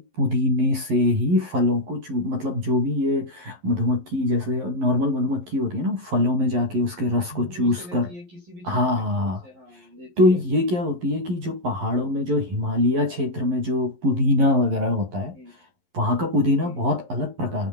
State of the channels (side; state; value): left; late; 11 ms